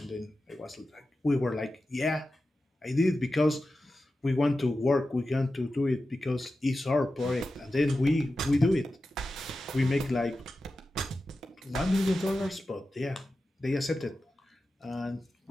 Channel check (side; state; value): both; normal; correlation 0.92